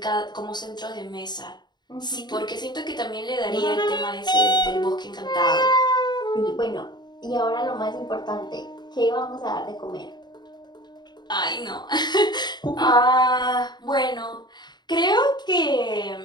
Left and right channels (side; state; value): right; late; 0.21 ms